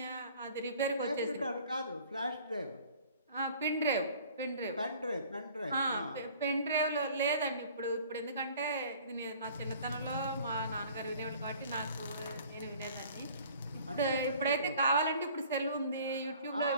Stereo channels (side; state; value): both; inverted; correlation -0.51